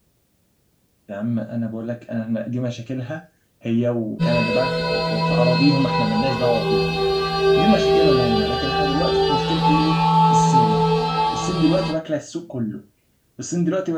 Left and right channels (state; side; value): identical; both; correlation 1.00